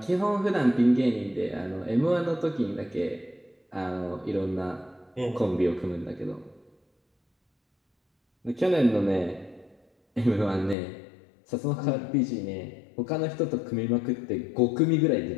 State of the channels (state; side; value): drops out; right; at 10.8 s